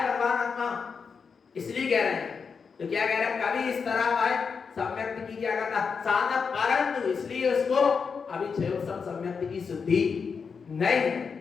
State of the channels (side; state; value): right; quieter; 5.7 dB